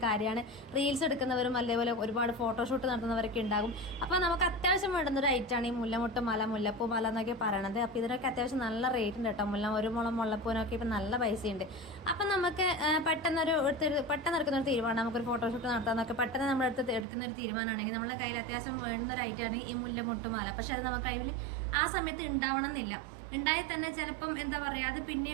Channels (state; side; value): drops out; left; at 17.1 s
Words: കാര്യമാണ് റീൽസ് എടുക്കുന്നവരും അതേപോലെ ഒരുപാട് ഫോട്ടോഷൂട്ട് നടത്തുന്നവരൊക്കെ ഉണ്ടാകും. അപ്പോൾ നമുക്ക് അത്യാവശ്യം വേണ്ടുന്നൊരു ഐറ്റമാണ് ഈ മുല്ലമുട്ട് മല, മുല്ലപ്പൂ മല എന്നൊക്കെ പറയണത്. അപ്പോൾ ഇതിനൊക്കെ അത്യാവശ്യം നല്ല റേറ്റ് ഉണ്ട് കേട്ടോ. ഒരു മുളം മുല്ലപ്പൂവിനൊക്കെ ഇപ്പം നല്ല പൈസയുണ്ട്. അപ്പം നമുക്ക് പെട്ടെന്ന് എടുക്കുന്നൊരു തീരുമാനം, നമുക്കൊരു ഫോട്ടോഷൂട്ട് നടത്താമെന്നൊക്കെ പെട്ടെന്ന് നമ്മൾ എടുക്കുന്നൊരു തീരുമാനമാണെങ്കിൽ നമ്മുടെ കയ്യിൽ അത്യാവശ്യം വേണ്ടുന്നൊരു ഐറ്റമാണ് ഈ മുല്ലമുട്ട് മല. പക്ഷെ അത് നമ്മുടെ കയ്യിൽ ആ സമയത്ത് ഉണ്ടാവണം എന്നില്ല. ഉണ്ടായി തന്നെ ചിലപ്പം എന്താ പറയുക, അത്